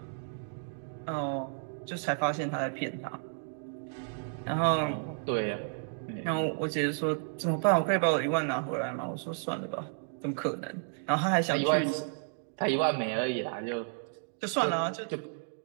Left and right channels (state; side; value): silent; left; digital silence